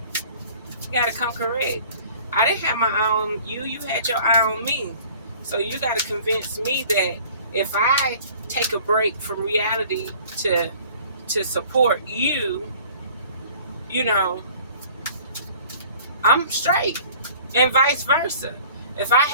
He got to come correct. I didn't have my eye on you. You had your eye on me. So you got to convince me that if I take a break from reality to support you, you know, I'm straight. And vice versa. If I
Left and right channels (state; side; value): inverted; both; correlation -0.50